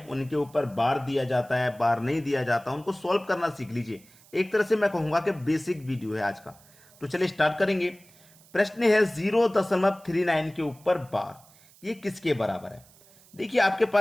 उनके ऊपर बार दिया जाता है, बार नहीं दिया जाता, उनको सॉल्व करना सीख लीजिए। एक तरह से मैं कहूंगा कि बेसिक वीडियो है आज का। तो चलिए स्टार्ट करेंगे। प्रश्न है 0.39 के ऊपर बार, ये किसके बराबर है? देखिए, आपके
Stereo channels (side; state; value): right; noise; hiss, 27 dB below the sound